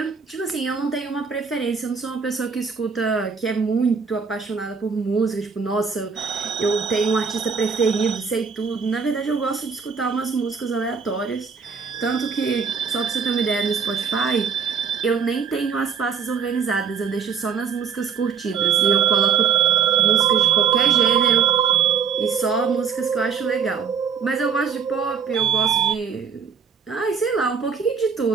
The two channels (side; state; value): left; quieter; 6.3 dB